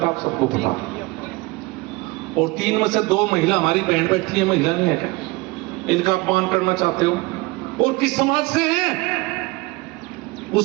आप सबको पता। और 3 में से 2 महिला हमारी बहन बैठी है, महिला नहीं है क्या? इनका अपमान करना चाहते हो? और किस समाज से हैं?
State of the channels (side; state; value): left; quieter; 23.5 dB